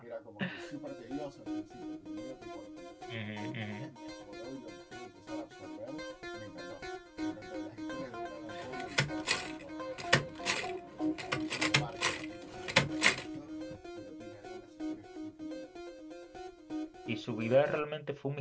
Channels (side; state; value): both; identical; correlation 1.00